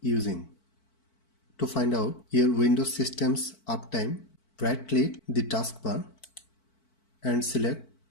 using. To find out your Windows system's uptime, right click the taskbar and select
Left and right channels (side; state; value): right; late; 4.5 ms